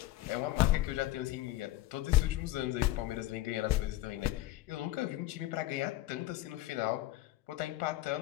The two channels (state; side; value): quieter; right; 16.3 dB